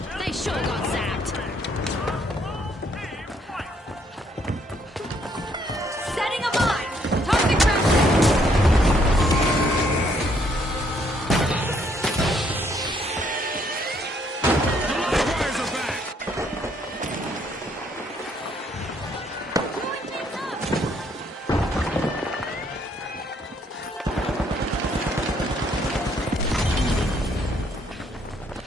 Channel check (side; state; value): both; normal; correlation 0.69